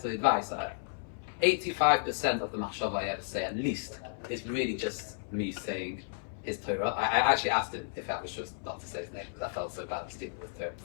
of the advice. 85% of the machshava I ever say, at least, is really just me saying his Torah. I actually asked him if I was just not to say his name because I felt so bad stealing with Torah. He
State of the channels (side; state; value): right; silent; 56 dB below the other